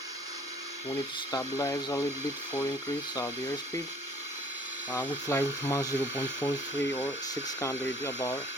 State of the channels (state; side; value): normal; both; correlation 0.55